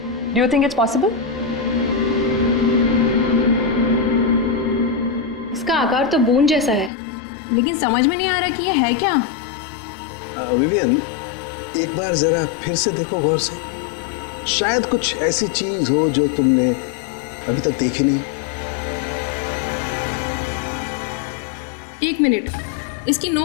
Do you think it's possible? इसका आकार तो बूंद जैसा है, लेकिन समझ में नहीं आ रहा कि ये है क्या। विवियन, एक बार जरा फिर से देखो गौर से, शायद कुछ ऐसी चीज हो जो तुमने अभी तक देखी नहीं। एक मिनट, इसकी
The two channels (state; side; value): drops out; right; at 6.9 s